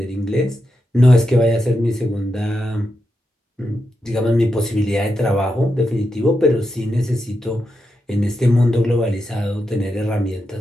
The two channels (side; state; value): both; normal; correlation 0.86